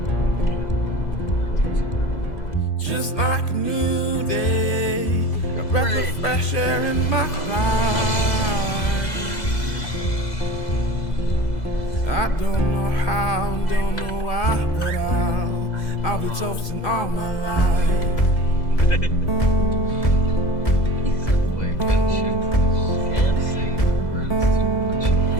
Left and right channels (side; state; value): right; late; 2.0 ms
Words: just like a new day, a breath of fresh air in my life. I don't know how, don't know why, but I'll be toasting all my life.